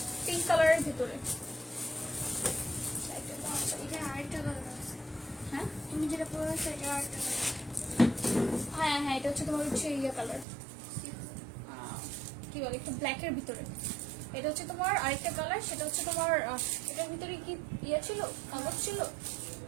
পিঙ্ক কালারের ভিতরে। এটা আরেকটা কালার আছে। হ্যাঁ, তুমি যেটা পরে আছো এটা আরেকটা কালার। হ্যাঁ, এটা হচ্ছে তোমার হচ্ছে ইয়ে কালার, কি বলে, একটু ব্ল্যাকের ভিতরে। এটা হচ্ছে তোমার আরেকটা কালার, সেটা হচ্ছে তোমার এটার ভিতরে কি ইয়ে ছিল, কাগজ ছিল।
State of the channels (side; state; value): left; drops out; at 10.5 s